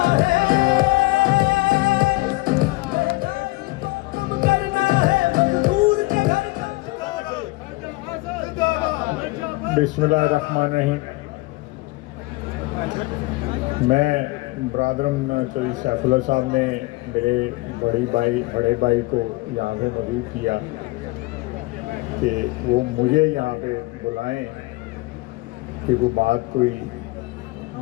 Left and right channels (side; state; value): right; quieter; 22.1 dB